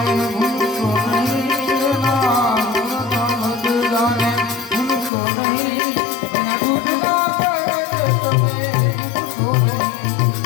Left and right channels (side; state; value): right; drops out; at 5.1 s